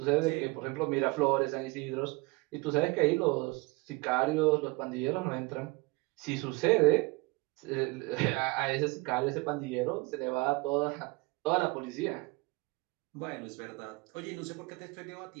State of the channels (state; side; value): quieter; left; 25.0 dB